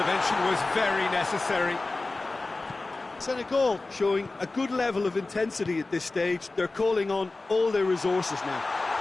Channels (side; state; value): right; quieter; 3.3 dB